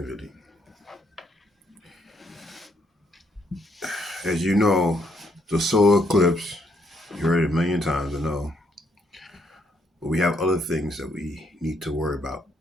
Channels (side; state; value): both; normal; correlation 0.72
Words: As you know, the solar eclipse, you heard it a million times, I know, but we have other things that we need to worry about.